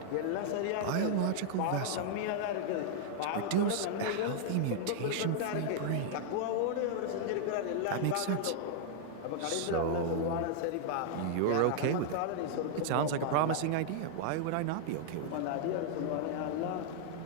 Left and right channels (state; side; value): different; both; correlation -0.01